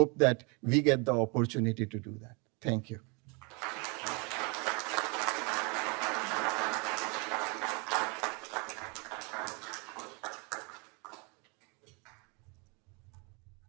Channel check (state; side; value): quieter; left; 31.3 dB